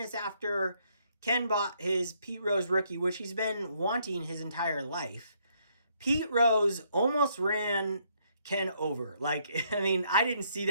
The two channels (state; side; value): inverted; both; correlation -0.71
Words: after Ken bought his Pete Rose rookie, which he's been wanting his entire life, Pete Rose almost ran Ken over. Like, I mean, I didn't see